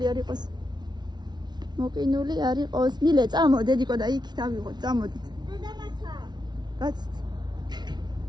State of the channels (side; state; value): left; late; 0.20 ms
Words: არ იყოს. მოყინული არ იყოს. მილე წამო დედიკო და იქ დავიღოთ. წამოდით. დედამაცა. კაცით.